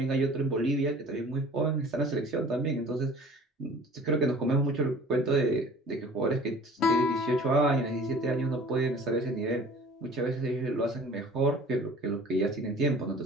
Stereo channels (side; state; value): both; normal; correlation 0.47